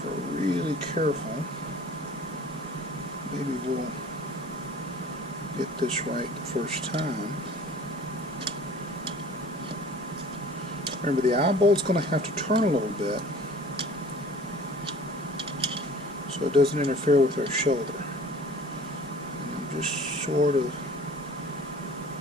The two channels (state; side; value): normal; both; correlation 0.46